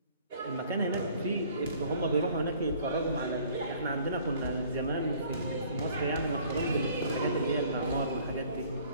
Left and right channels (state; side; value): inverted; both; correlation -0.55